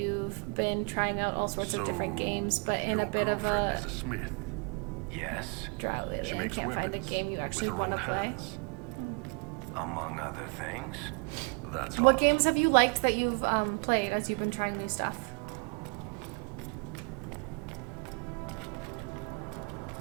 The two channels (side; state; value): left; quieter; 34.1 dB